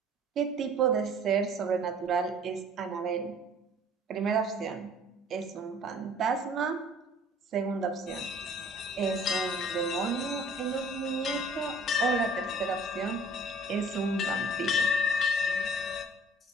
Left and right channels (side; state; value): both; normal; correlation 0.53